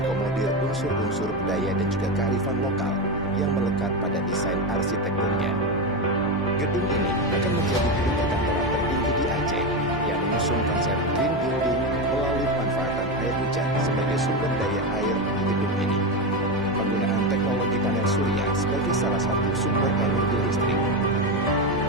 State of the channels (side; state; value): both; normal; correlation 0.14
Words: unsur-unsur budaya dan juga kearifan lokal yang melekat pada desain arsitekturnya. Gedung ini akan menjadi gedung perkantoran tertinggi di Aceh yang mengusung konsep green building melalui pemanfaatan air hujan sebagai sumber daya air di gedung ini. Penggunaan teknologi panel surya sebagai salah satu sumber energi listrik.